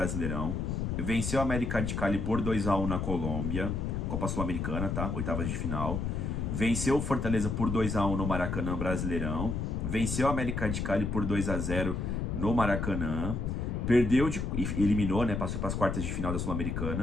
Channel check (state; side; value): noise; left; rumble, 1 dB below the sound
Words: Venceu o América de Cali por 2-1 na Colômbia, Copa Sul-Americana, tá? Oitavas de final. Venceu o Fortaleza por 2-1 no Maracanã Brasileirão. Venceu o América de Cali por 2-0 no Maracanã. Perdeu e eliminou, né? Passou para as quartas de final da